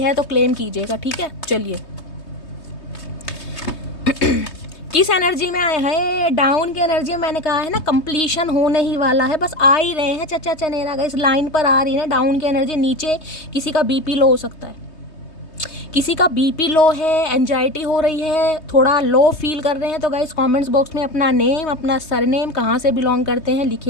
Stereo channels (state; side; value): late; right; 3.2 ms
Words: है तो क्लेम कीजिएगा, ठीक है। चलिए किस एनर्जी में आए हैं, डाउन की एनर्जी में। मैंने कहा है ना कंप्लीशन होने ही वाला है, बस आ ही रहे हैं चचा चनेरा गाइस, लाइन पर आ रही है डाउन की एनर्जी। नीचे किसी का बीपी लो हो सकता है, किसी का बीपी लो है, एंजाइटी हो रही है, थोड़ा लो फील कर रहे हैं, तो गाइस कमेंट्स बॉक्स में अपना नेम, अपना सरनेम, कहाँ से बिलोंग करते हैं